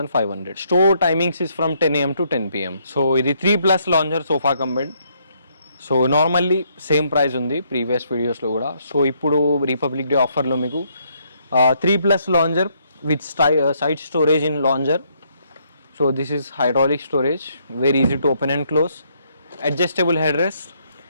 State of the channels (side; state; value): both; inverted; correlation -0.72